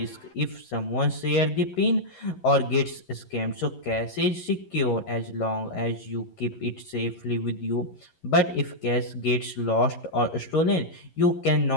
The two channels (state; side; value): late; right; 11 ms